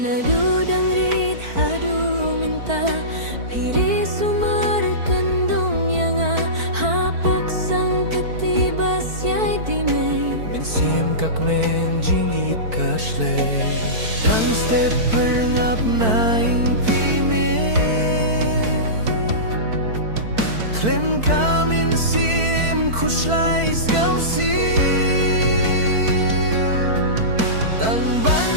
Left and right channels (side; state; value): left; late; 4.5 ms